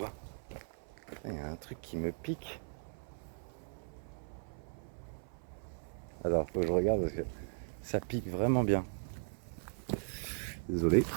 Il y a un truc qui me pique. Alors, faut que je regarde parce que ça pique vraiment bien. Désolé.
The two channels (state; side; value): silent; left; 52 dB below the other